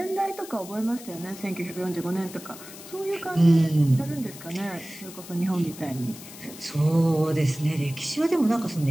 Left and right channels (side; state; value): left; noise; hiss, 15 dB below the sound